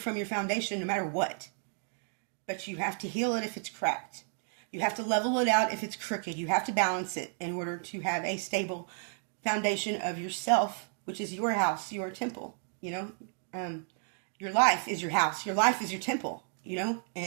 your foundation no matter what. But you have to heal it if it's cracked. You have to level it out if it's crooked. You have to balance it in order to have a stable foundation of yourself, which is your house, your temple. Your life is your house. Your life is your temple.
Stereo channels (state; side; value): silent; left; 56 dB below the other